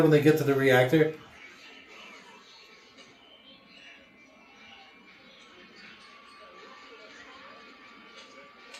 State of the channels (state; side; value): identical; both; correlation 1.00